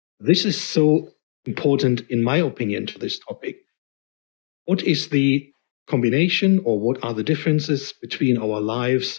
This is so important, in my opinion, to this topic. What is the combination or what are the differences between our lives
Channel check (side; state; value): right; silent; digital silence